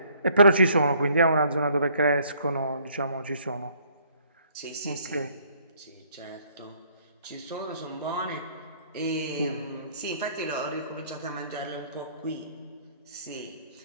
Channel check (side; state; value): both; inverted; correlation -0.62